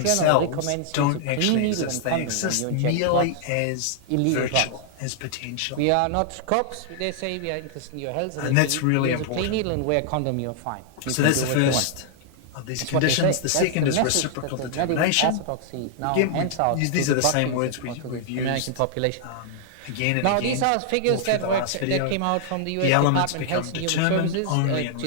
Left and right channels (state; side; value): different; both; correlation -0.01